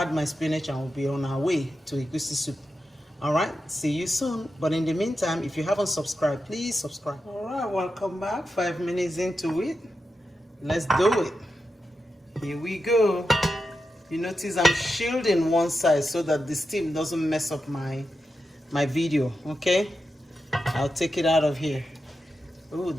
my spinach, and we'll be on our way to egusi soup. All right, see you soon. But in the meantime, if you haven't subscribed, please subscribe. All right, welcome back. 5 minutes into it. Let's do it. Here we go. You notice I'm shielding one side so that the steam doesn't mess up my video, okay? I'll take it out of here. Oh,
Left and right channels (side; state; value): both; normal; correlation 0.89